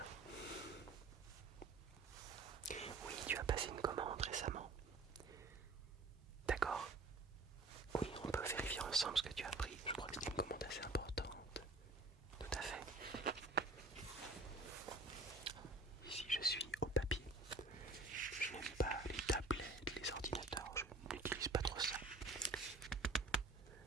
Oui, tu as passé une commande récemment. D'accord. Oui, on peut vérifier ensemble ce que tu as pris. Je crois que c'était une commande assez importante. Tout à fait. Ici, je suis au papier. Je n'aime pas les tablettes, les ordinateurs. Je n'utilise pas trop ça.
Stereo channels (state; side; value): quieter; left; 3.2 dB